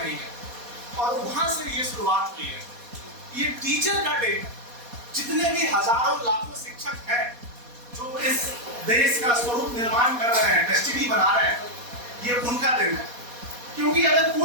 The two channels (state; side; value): late; left; 4.2 ms